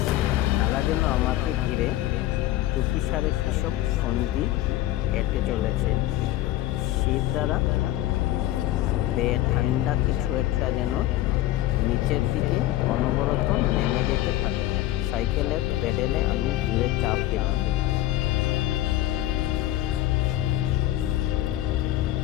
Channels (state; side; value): quieter; right; 14.9 dB